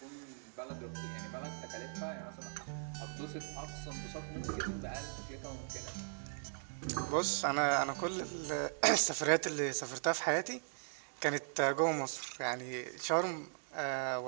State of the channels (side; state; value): left; silent; digital silence